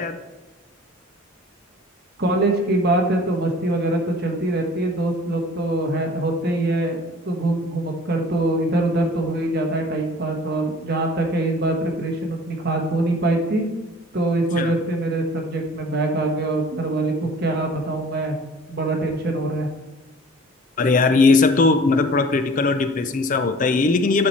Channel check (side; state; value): both; normal; correlation 0.48